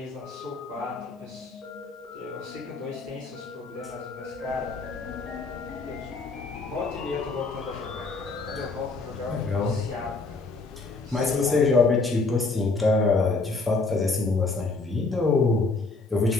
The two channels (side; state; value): right; quieter; 3.7 dB